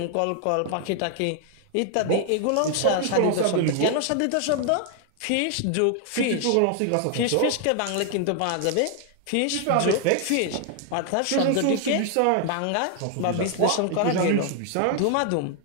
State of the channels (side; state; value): both; different; correlation 0.00